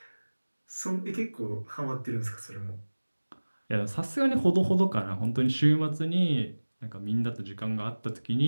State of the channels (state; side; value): inverted; both; correlation -1.00